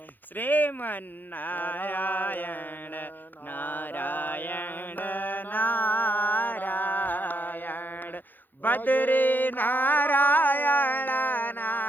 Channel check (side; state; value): right; late; 0.088 ms